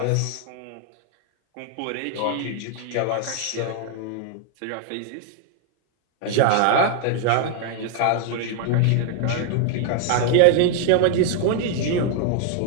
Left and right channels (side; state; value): both; different; correlation 0.00